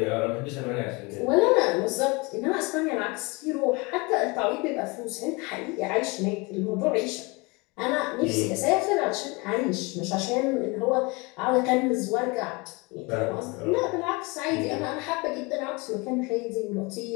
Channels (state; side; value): quieter; right; 26.9 dB